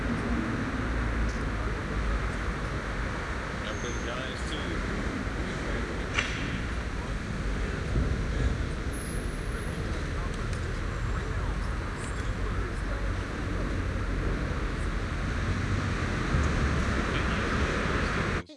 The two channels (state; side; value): identical; both; correlation 1.00